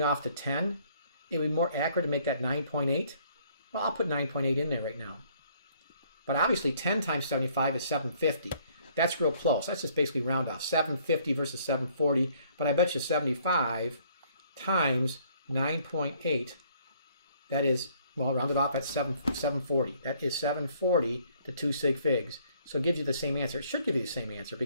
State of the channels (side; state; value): both; inverted; correlation -0.63